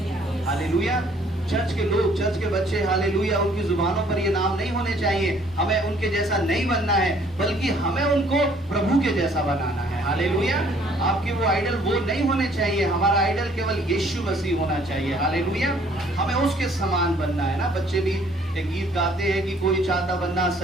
हालेलुया। चर्च के लोग, चर्च के बच्चे, हालेलुया, उनकी जुबानों पर ये नाम नहीं होने चाहिए, हमें उनके जैसा नहीं बनना है, बल्कि हमें उनको प्रभु के जैसा बनाना है। हालेलुया। आपके वो आइडल वो नहीं होने चाहिए, हमारा आइडल केवल यीशु मसीह होना चाहिए। हालेलुया। हमें उसके समान बनना है ना। बच्चे भी एक गीत गाते हैं कि कोई चाहता बनना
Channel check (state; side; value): normal; both; correlation 0.60